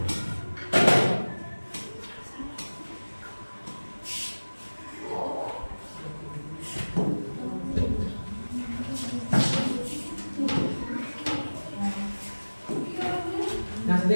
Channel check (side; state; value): both; inverted; correlation -1.00